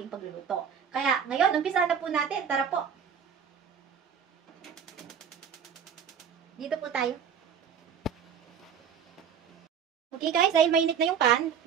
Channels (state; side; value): quieter; left; 7.6 dB